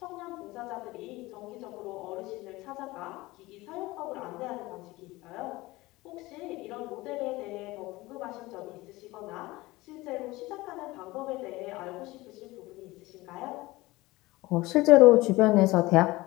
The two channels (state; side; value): quieter; right; 20.1 dB